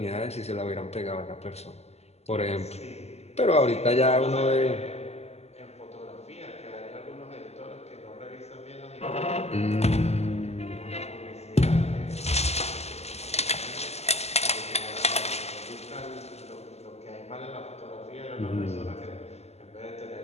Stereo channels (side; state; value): right; late; 0.30 ms